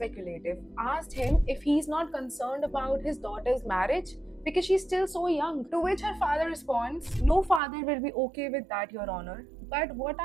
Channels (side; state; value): left; drops out; at 7.6 s